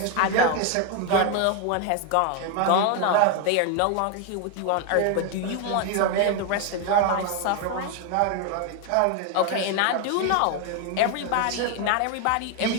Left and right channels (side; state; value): both; different; correlation 0.01